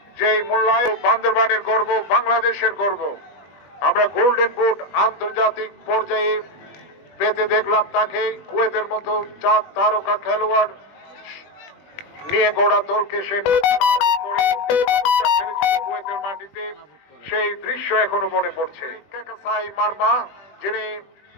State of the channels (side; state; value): right; late; 20 ms